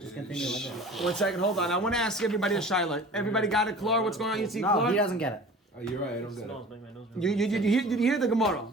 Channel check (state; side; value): normal; both; correlation 0.42